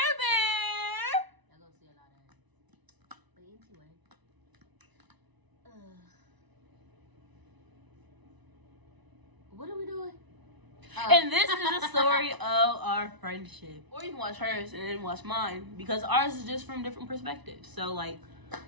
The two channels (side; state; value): left; late; 1.0 ms